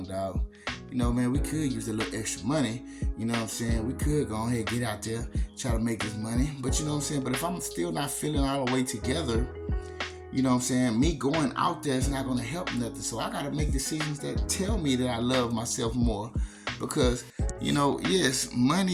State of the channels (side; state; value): both; identical; correlation 1.00